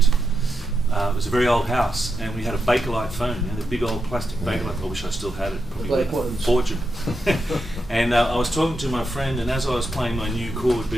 it was a very old house, and we had a Bakelite phone, the big old plastic Bakelite. I wish I still had it. Probably worth a fortune. And I was talking to my friend, and as I was playing my new chord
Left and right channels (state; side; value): normal; both; correlation 0.86